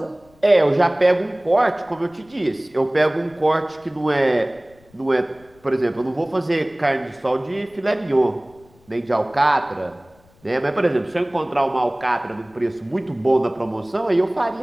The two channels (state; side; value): noise; left; rumble, 30 dB below the sound